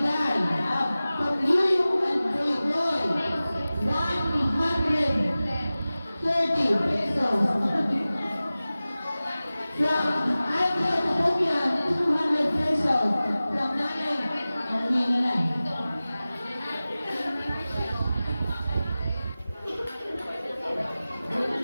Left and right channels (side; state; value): both; inverted; correlation -0.97